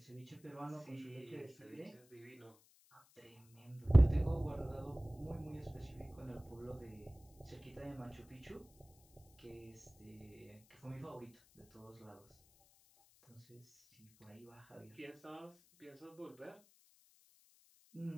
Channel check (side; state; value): left; noise; hiss, 28 dB below the sound